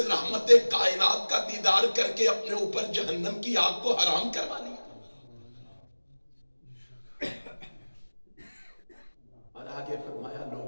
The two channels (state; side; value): inverted; both; correlation -1.00